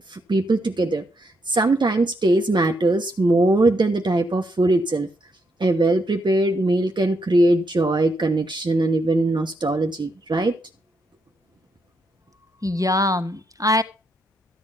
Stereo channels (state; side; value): normal; both; correlation 0.78